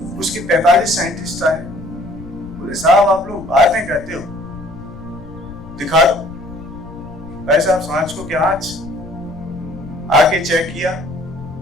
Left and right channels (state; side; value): noise; left; rumble, 16 dB below the sound